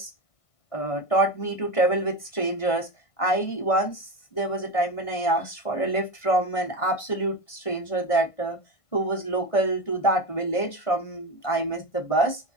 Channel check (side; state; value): right; late; 1.5 ms